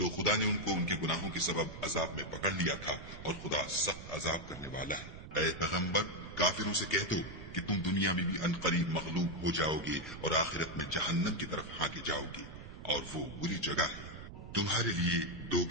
خدا نے ان کو ان کے گناہوں کے سبب عذاب میں پکڑ لیا تھا، اور خدا سخت عذاب کرنے والا ہے۔ اے پیغمبر، کافروں سے کہہ دو کہ تم دنیا میں بھی عنقریب مغلوب ہو جاؤ گے اور آخرت میں جہنم کی طرف ہانکے جاؤ گے، اور وہ بری جگہ ہے۔ تمہارے لیے دو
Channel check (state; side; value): noise; right; rumble, 13 dB below the sound